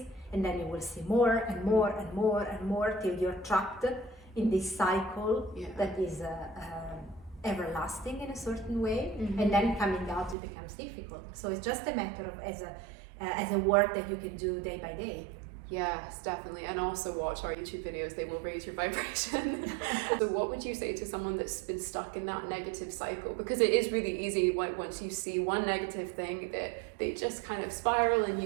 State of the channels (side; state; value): left; drops out; at 10.4 s